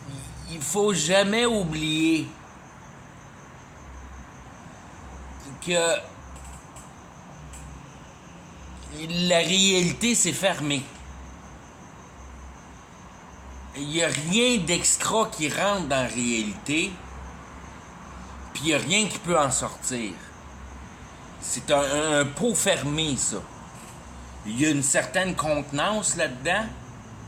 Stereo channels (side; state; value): both; identical; correlation 1.00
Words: Il faut jamais oublier que la réalité, c'est fermé. Il n'y a rien d'extra qui rentre dans la réalité, puis il n'y a rien qui peut en sortir. C'est un pot fermé, ça. Il y a une certaine contenance là-dedans,